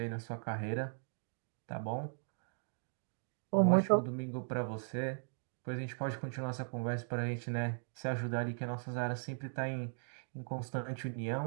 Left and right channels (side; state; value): left; silent; digital silence